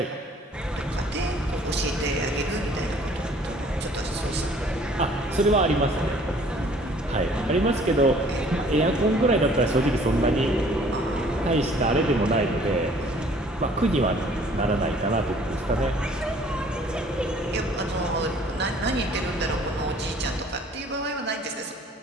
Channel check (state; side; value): normal; both; correlation 0.55